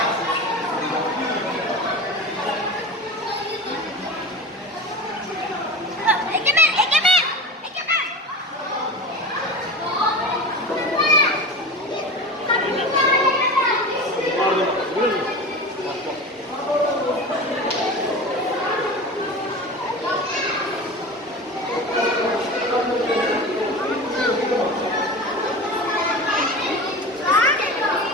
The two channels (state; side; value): normal; both; correlation 0.31